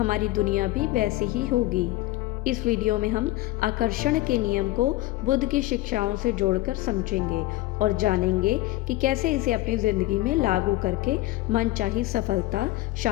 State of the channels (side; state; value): right; quieter; 17.7 dB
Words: दुनिया भी वैसी ही होगी। इस वीडियो में हम आकर्षण के नियम को बुद्ध की शिक्षाओं से जोड़कर समझेंगे और जानेंगे कि कैसे इसे अपनी ज़िंदगी में लागू करके मनचाही सफलता,